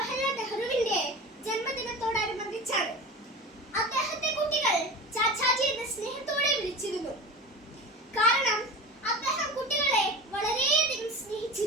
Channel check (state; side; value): normal; both; correlation 0.31